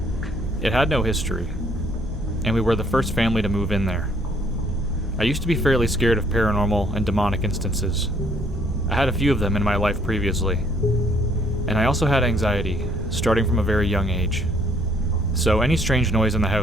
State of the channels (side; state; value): both; normal; correlation 0.64